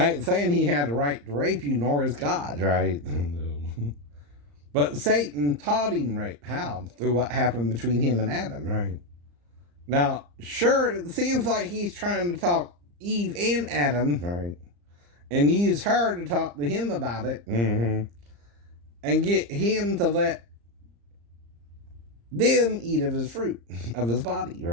ain't saying he had a right to rape you, nor is God, right? But Satan taught him rape. How? Through what happened between him and Adam, right? Now, sure, it seems like he's trying to talk Eve and Adam, right, and use her to talk to him about it, and get him to let them eat of his fruit, of his body,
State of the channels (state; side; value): late; left; 34 ms